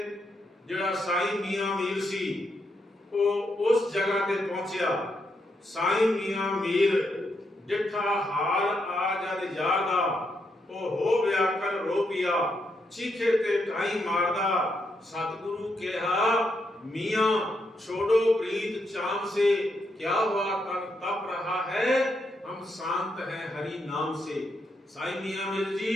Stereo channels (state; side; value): normal; both; correlation 0.80